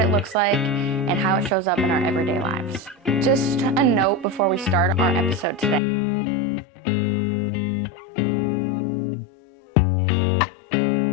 it looks like, and how it shows up in our everyday lives. Just a note before we start our episode today is that we will be talking about heavy topics, which include abuse,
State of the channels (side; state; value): right; drops out; at 5.8 s